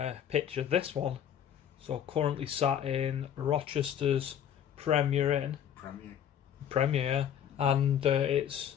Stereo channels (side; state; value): right; quieter; 9.4 dB